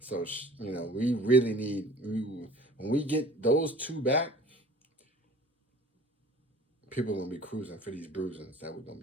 you know, we really need, when we get those two back, people are going to be cruising for these bruisings that we're going to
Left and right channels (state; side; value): normal; both; correlation 0.46